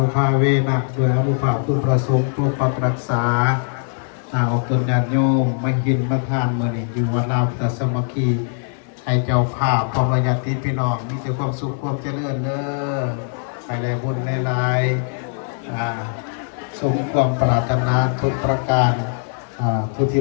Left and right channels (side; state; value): right; silent; 57 dB below the other